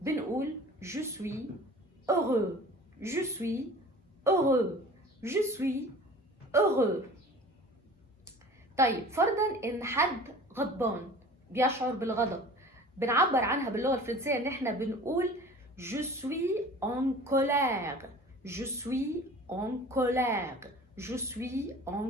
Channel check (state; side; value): normal; both; correlation 0.43